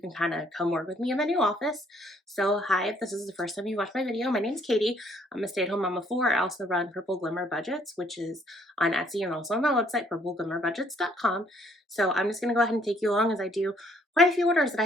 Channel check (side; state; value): both; normal; correlation 0.65